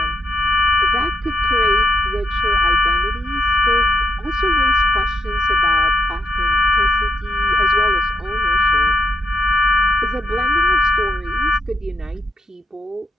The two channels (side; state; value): both; normal; correlation 0.81